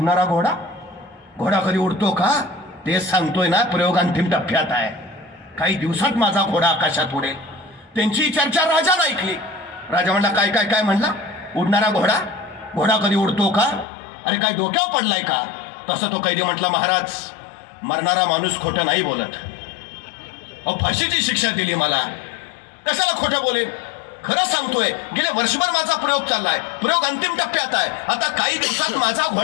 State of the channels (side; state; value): right; drops out; at 13.9 s